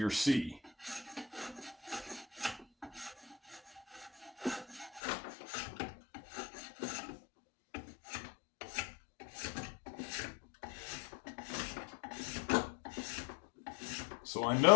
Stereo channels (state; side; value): drops out; right; at 5.0 s